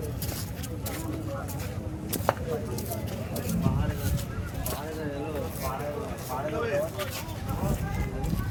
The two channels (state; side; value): identical; both; correlation 1.00